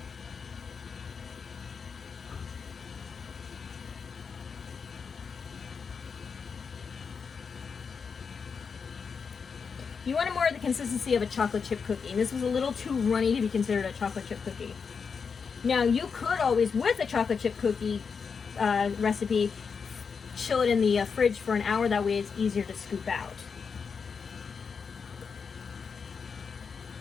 You want more of the consistency of a chocolate chip cookie, and this was a little too runny to be considered a chocolate chip cookie. Now, you could always, with a chocolate chip cookie recipe, chill it in the fridge for an hour. That way it's easier to scoop out.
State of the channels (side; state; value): right; quieter; 5.8 dB